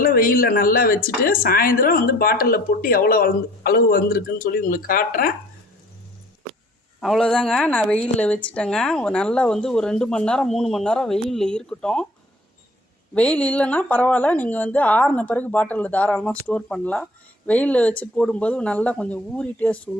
வெயிலில் நல்லா வச்சுட்டு சாயந்தரம் வந்து பாட்டிலில் போட்டு எவ்வளோ அளவு வந்திருக்குன்னு சொல்லி உங்களுக்கு காட்டுறேன். அவ்வளோதாங்க. நான் வெயிலில் வச்சுட்டேங்க. நல்லா வந்து ஒரு 2 மணி நேரம் 3 மணி நேரம் வெயிலில் இருக்கட்டும். வெயில் இல்லைன்னா பரவாயில்ல, நீங்கள் வந்து ஆறின பிறகு பாட்டிலில் தாராளமாக ஸ்டோர் பண்ணலாம். வெயிலில் வச்சு போடும்போது நல்லா கொஞ்சம் ஊறி டேஸ்ட்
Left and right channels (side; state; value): both; normal; correlation 0.53